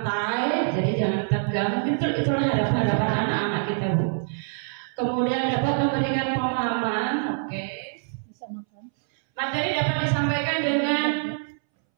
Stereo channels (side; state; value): left; silent; 62 dB below the other